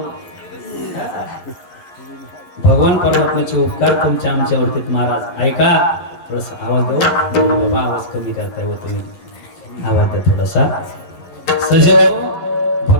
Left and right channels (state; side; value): late; right; 11 ms